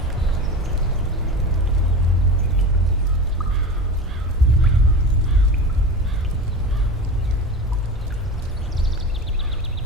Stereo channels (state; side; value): normal; both; correlation 0.30